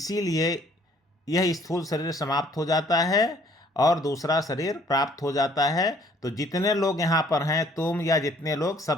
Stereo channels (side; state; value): both; normal; correlation 0.60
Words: यह स्थूल शरीर समाप्त हो जाता है और दूसरा शरीर प्राप्त हो जाता है। तो जितने लोग यहाँ पर हैं, तुम या जितने लोग,